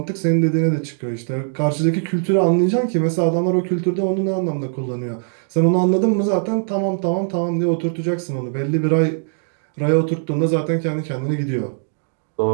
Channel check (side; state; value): left; silent; digital silence